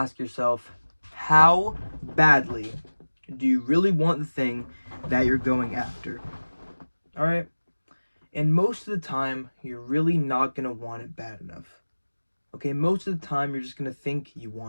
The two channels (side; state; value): both; inverted; correlation -1.00